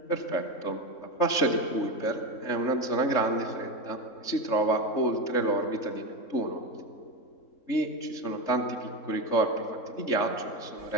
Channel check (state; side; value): late; right; 3.3 ms